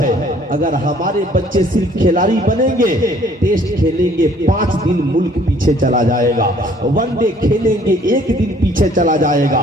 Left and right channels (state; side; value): normal; both; correlation 0.58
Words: اگر ہمارے بچے صرف کھلاڑی بنیں گے، ٹیسٹ کھیلیں گے 5 دن ملک پیچھے چلا جائے گا، ون ڈے کھیلیں گے 1 دن پیچھے چلا جائے